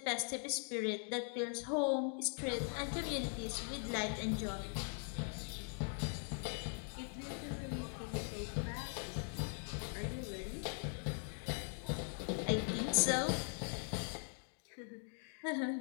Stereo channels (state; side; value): silent; right; 50 dB below the other